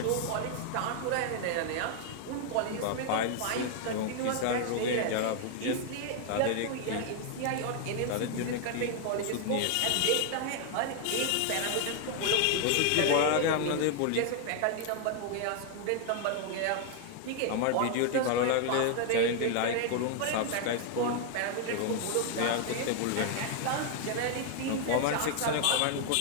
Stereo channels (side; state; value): both; different; correlation 0.00